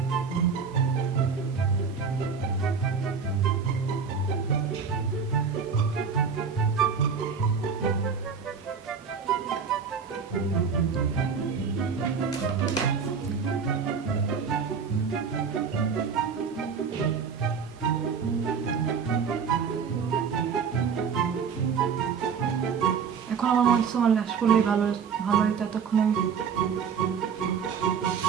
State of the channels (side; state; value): left; quieter; 6.1 dB